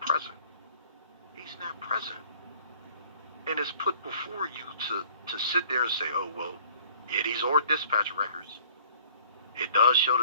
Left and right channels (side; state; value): both; inverted; correlation -0.54